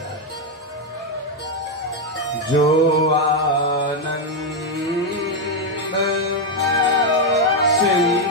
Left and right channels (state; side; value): normal; both; correlation 0.04